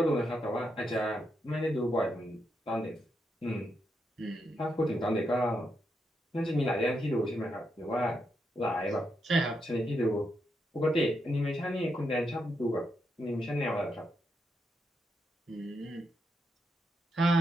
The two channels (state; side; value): normal; both; correlation 0.82